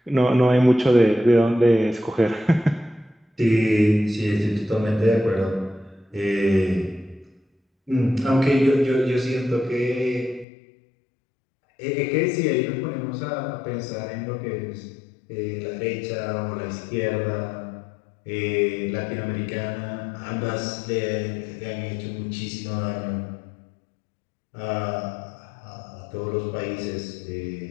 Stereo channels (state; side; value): drops out; right; at 10.5 s